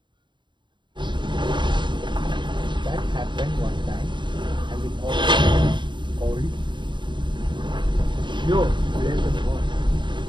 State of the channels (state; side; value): late; left; 0.23 ms